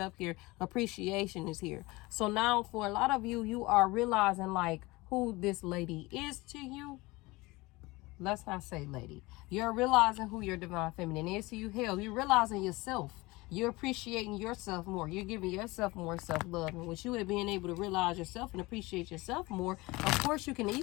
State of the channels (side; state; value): right; quieter; 22.2 dB